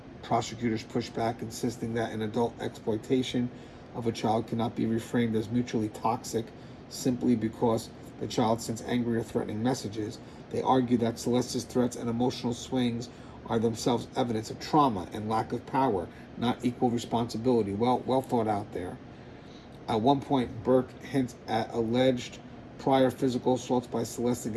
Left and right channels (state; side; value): identical; both; correlation 1.00